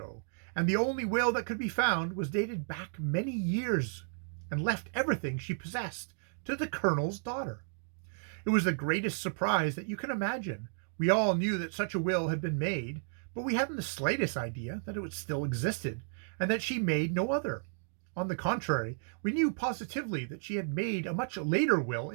and the only will that could be found was dated back many years, and left everything she possessed to the Colonel's daughter. It was the greatest surprise that you can imagine. We all knew that such a will had been made, but we hadn't the slightest idea that it still existed, and that she made no other. On the contrary, we knew positively that she had made a much later will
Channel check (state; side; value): silent; left; digital silence